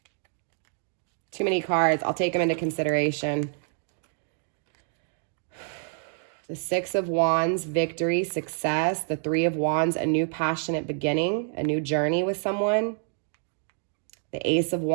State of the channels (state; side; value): silent; left; 60 dB below the other